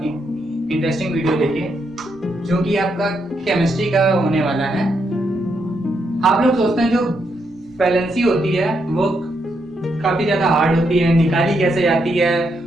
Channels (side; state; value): left; noise; rumble, 28 dB below the sound